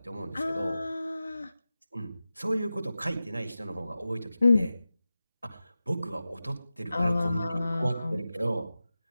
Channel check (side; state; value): both; inverted; correlation -0.94